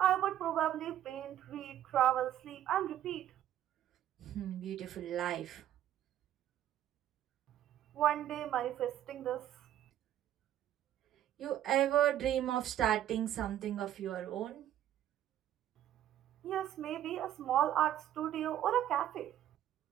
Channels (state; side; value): quieter; left; 11.7 dB